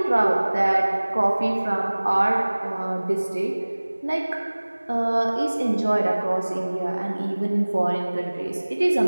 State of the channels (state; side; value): inverted; both; correlation -1.00